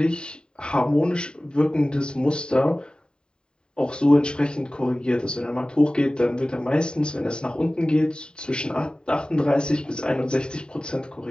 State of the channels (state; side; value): late; right; 0.048 ms